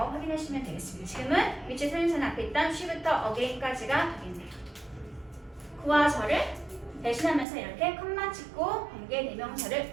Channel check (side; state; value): left; drops out; at 7.5 s